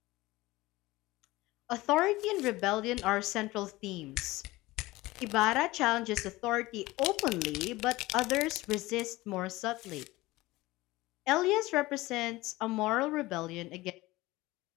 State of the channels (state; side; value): quieter; right; 19.6 dB